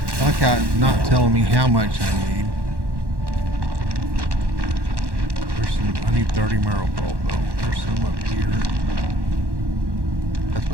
I like how it's not telling me how much I need. There's some, I need 30 marrow pulp though. There's some up here. That's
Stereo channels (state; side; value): late; left; 1.1 ms